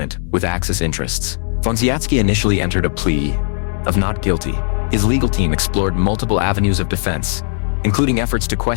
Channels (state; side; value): silent; right; digital silence